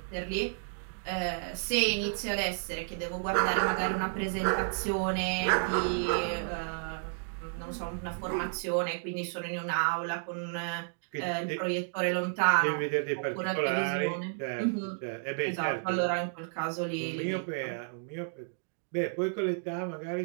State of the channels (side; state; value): left; silent; digital silence